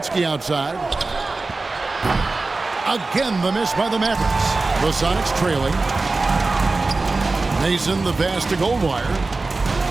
outside. Again, the miss by the Mavericks. The Sonics trailing. Mason the pass to Goldwire.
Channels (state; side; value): quieter; left; 3.5 dB